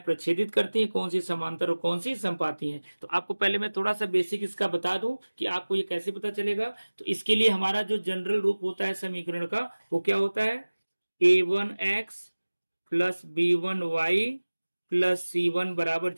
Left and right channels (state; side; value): inverted; both; correlation -1.00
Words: प्रच्छेदित करती हैं, कौन सी समांतर और कौन सी संपाती हैं। तो आपको पहले मैं थोड़ा सा बेसिक इसका बता दूं कि आपको ये कैसे पता चलेगा। तो इसके लिए हमारा जो जनरल रूप होता है समीकरण का, वो क्या होता है? A1x plus B1y plus C1 बराबर